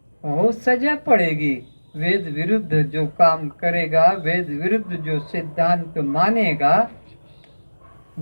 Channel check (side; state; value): both; inverted; correlation -1.00